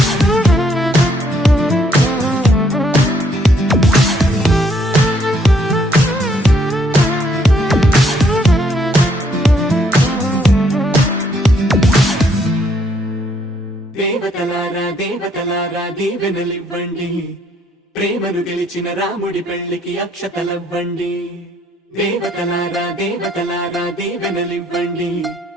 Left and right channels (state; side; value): normal; both; correlation 0.69